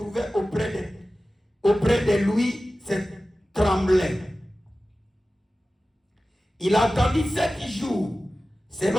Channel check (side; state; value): both; normal; correlation 0.95